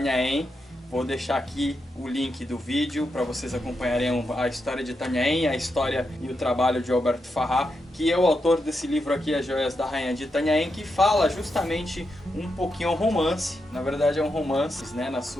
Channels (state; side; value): normal; both; correlation 0.85